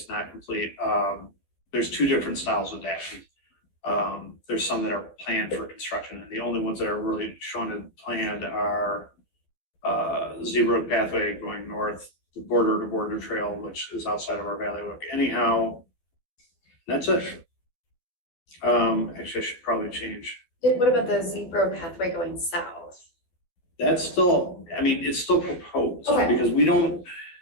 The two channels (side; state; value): right; late; 12 ms